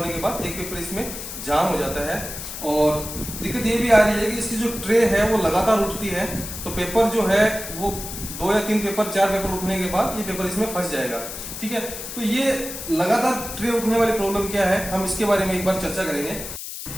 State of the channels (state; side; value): noise; left; hiss, 9 dB below the sound